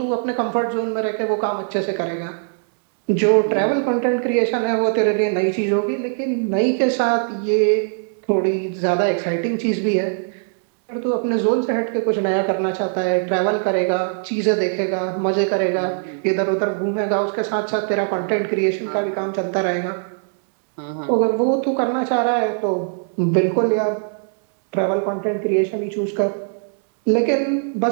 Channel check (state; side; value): silent; left; digital silence